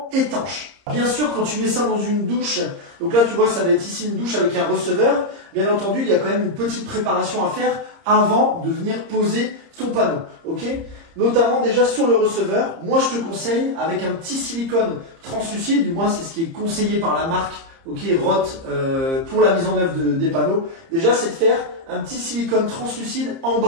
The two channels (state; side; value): late; left; 30 ms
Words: étanche. Bien sûr, quand tu mets ça dans une douche, donc là tu vois, ça va être ici une douche avec un receveur. Bien entendu, il y a quand même une petite préparation à faire avant de venir poser ton panneau, ok ? Notamment déjà sur le receveur, moi je te conseille avec un petit silicone translucide, du moins c'est ce qui est conseillé par la marque, ok, Roth, pour la mise en œuvre des panneaux. Déjà, c'est de faire un petit silicone translucide en